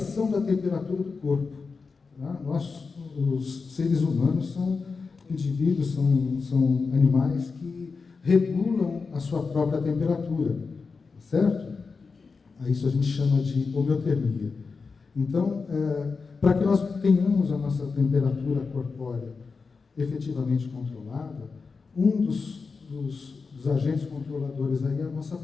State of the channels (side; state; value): right; quieter; 4.7 dB